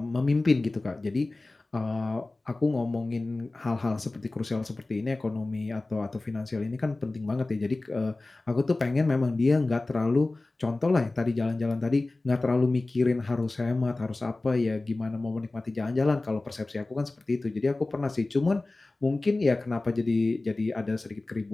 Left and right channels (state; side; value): quieter; right; 3.1 dB